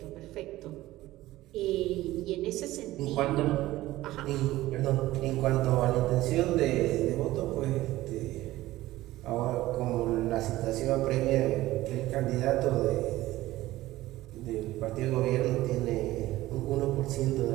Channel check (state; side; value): quieter; left; 16.6 dB